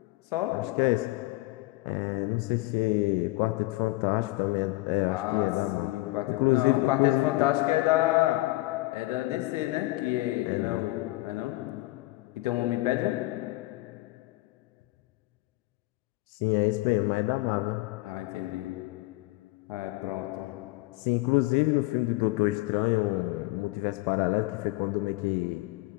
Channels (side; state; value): right; quieter; 20.3 dB